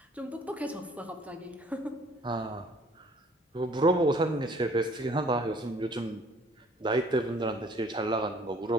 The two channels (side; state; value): both; normal; correlation 0.57